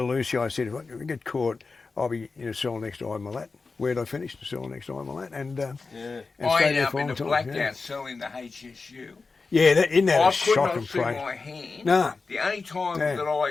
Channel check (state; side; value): quieter; right; 4.2 dB